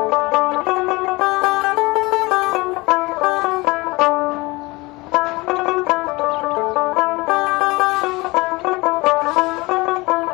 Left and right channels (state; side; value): quieter; right; 23.3 dB